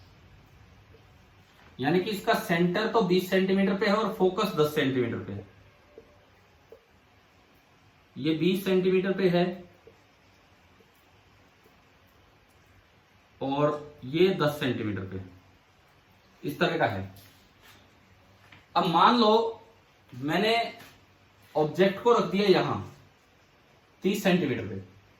यानी कि इसका सेंटर तो 20 सेंटीमीटर पे है और फोकस 10 सेंटीमीटर पे है। ये 20 सेंटीमीटर पे है और ये 10 सेंटीमीटर पे, इस तरह का है। अब मान लो मैंने ऑब्जेक्ट को रख दिया यहां 30 सेंटीमीटर पे।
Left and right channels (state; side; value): identical; both; correlation 1.00